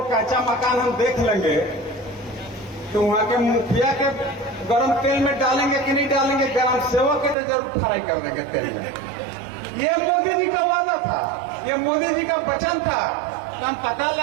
कच्चा मकान हम देख लेंगे तो वहां के मुखिया के गरम तेल में डालेंगे कि नहीं डालेंगे, ग्राम सेवक के तो जरूर फ्राई कर देंगे तेल में। ये मोदी जी का वादा था, ये मोदी जी का वचन था। तो हम पता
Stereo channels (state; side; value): drops out; left; at 7.4 s